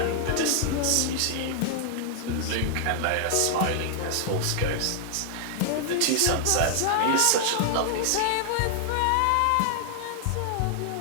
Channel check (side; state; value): both; different; correlation -0.01